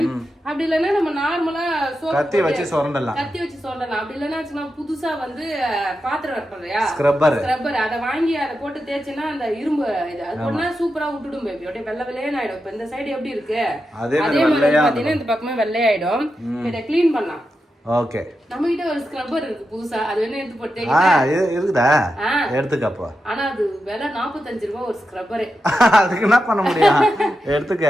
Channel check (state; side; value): normal; both; correlation 0.88